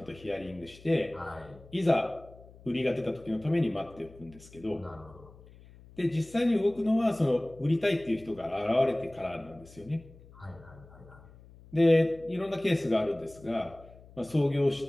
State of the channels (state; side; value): noise; left; hum, 22 dB below the sound